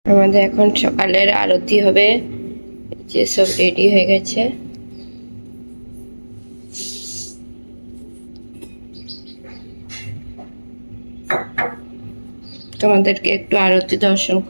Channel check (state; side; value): inverted; both; correlation -1.00